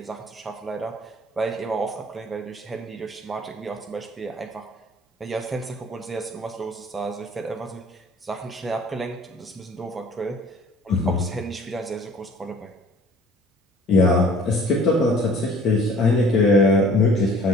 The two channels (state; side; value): normal; both; correlation 0.51